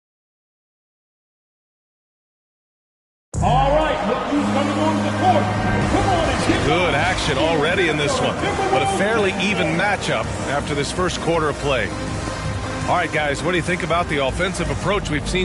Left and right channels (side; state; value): both; identical; correlation 1.00